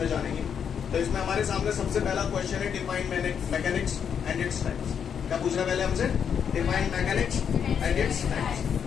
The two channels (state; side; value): quieter; right; 7.6 dB